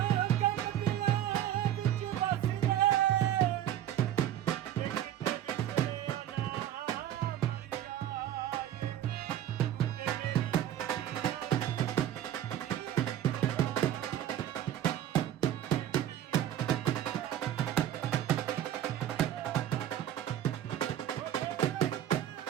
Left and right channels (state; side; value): quieter; left; 11.5 dB